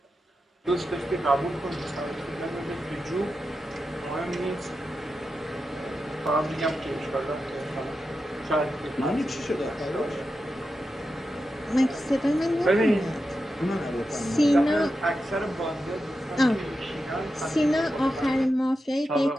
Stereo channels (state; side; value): normal; both; correlation 0.89